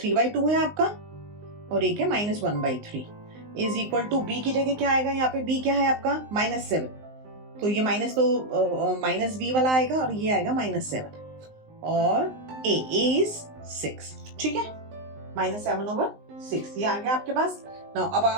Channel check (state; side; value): late; left; 19 ms